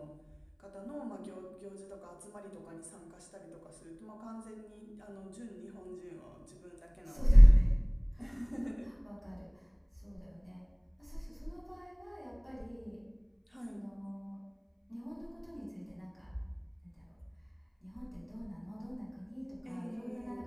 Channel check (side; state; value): both; identical; correlation 1.00